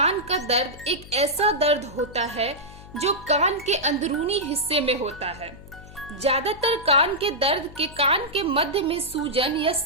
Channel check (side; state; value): left; noise; hum, 18 dB below the sound